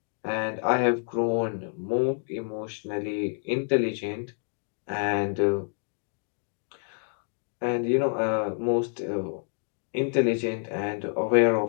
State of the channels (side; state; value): right; silent; 59 dB below the other